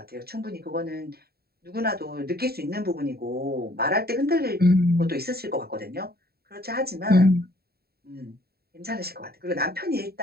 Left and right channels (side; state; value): left; late; 0.45 ms